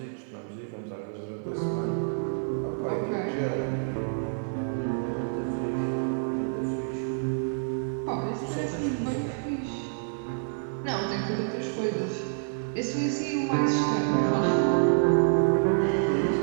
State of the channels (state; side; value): silent; left; digital silence